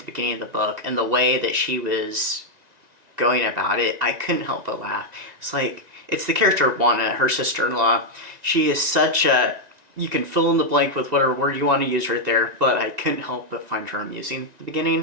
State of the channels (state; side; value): late; left; 1.9 ms